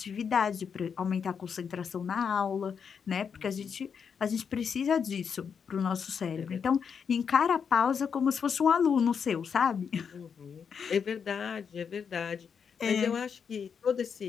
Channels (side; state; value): right; quieter; 6.7 dB